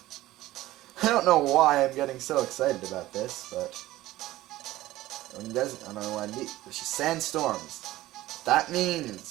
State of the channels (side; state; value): left; quieter; 16.3 dB